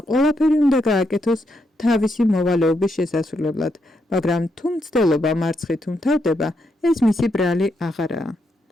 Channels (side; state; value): both; normal; correlation 0.80